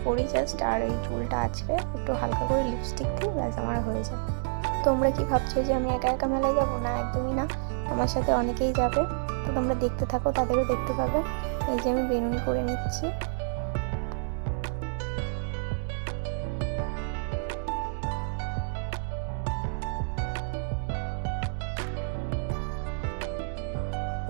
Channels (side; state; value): left; silent; 59 dB below the other